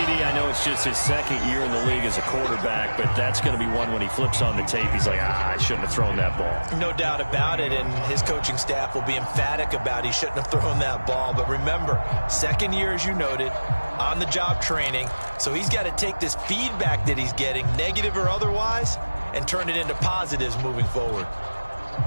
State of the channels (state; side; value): inverted; both; correlation -1.00